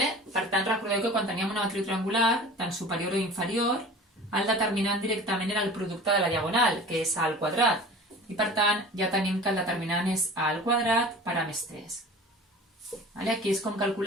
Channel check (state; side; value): normal; both; correlation 0.40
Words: tant, recordeu que quan teníem una matriu triangular, tant superior o inferior, el determinant directament era el producte de la diagonal, que és A al quadrat. I per tant, ja tenim que el determinant és A al quadrat per A més 3. Aquí és com